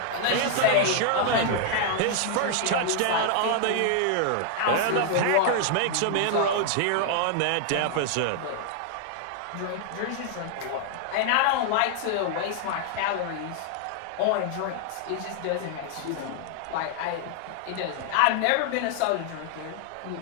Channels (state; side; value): different; both; correlation 0.00